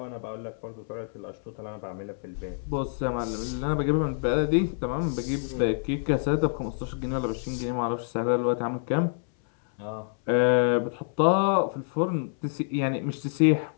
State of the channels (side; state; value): right; silent; 59 dB below the other